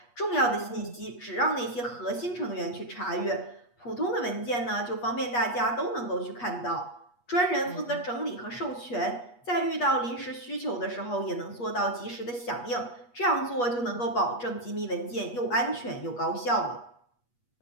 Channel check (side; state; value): right; late; 8.3 ms